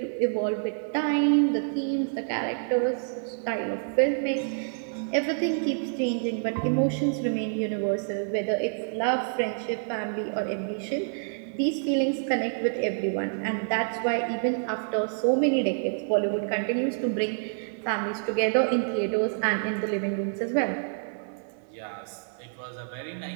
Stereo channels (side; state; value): left; silent; 60 dB below the other